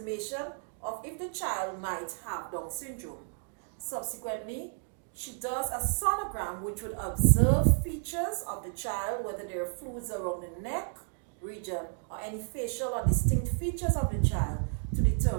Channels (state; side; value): silent; left; 57 dB below the other